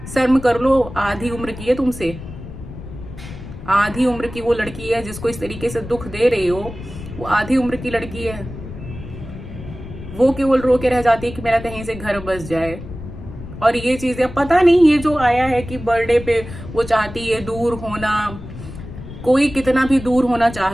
शर्म कर लो, आधी उम्र की है तुमसे, आधी उम्र की वो लड़की है जिसको इस तरीके से दुख दे रही हो, वो आधी उम्र की लड़की है। वो केवल रो के रह जाती है कि मेरा कहीं से घर बस जाए। और ये चीजें पता नहीं, ये जो आया है कि बर्थडे पे वो चाहती है दूर होना, कोई कितना भी दूर होना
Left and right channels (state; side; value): noise; left; rumble, 12 dB below the sound